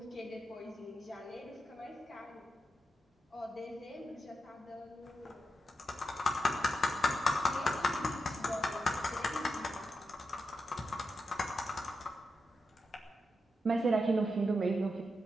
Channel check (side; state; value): both; normal; correlation 0.87